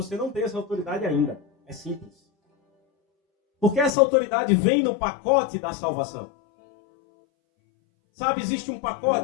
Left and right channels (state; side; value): drops out; right; at 3.9 s